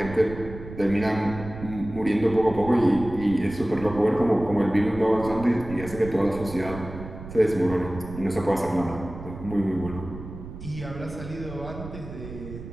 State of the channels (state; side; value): noise; right; rumble, 12 dB below the sound